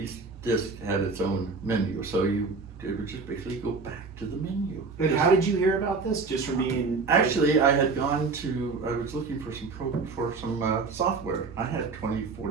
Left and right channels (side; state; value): left; quieter; 4.4 dB